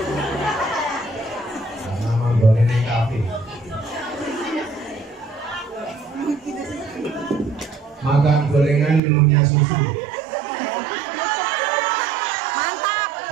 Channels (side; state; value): left; drops out; at 9.0 s